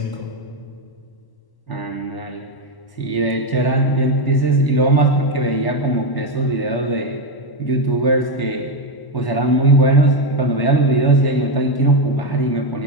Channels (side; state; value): right; late; 1.1 ms